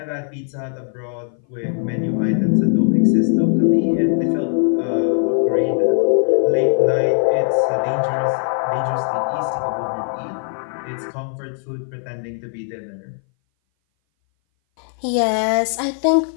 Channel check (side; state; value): right; silent; 60 dB below the other